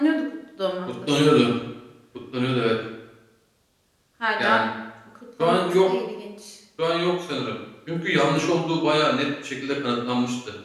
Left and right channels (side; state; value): both; identical; correlation 1.00